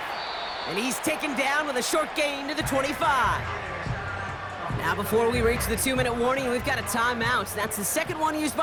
And he's taken down with a short gain to the 25. Now before we reach the 2-minute warning, we've got a timeout. That's the 2nd one used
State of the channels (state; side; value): identical; both; correlation 1.00